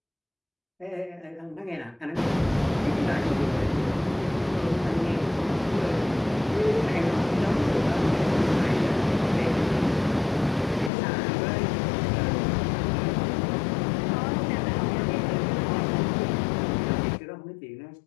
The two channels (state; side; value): drops out; right; at 10.9 s